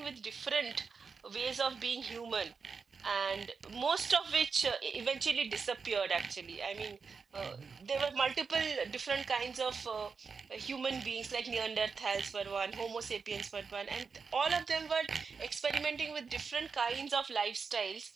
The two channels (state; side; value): quieter; left; 5.2 dB